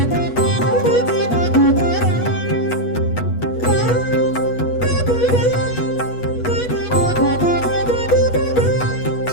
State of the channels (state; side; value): late; right; 8.2 ms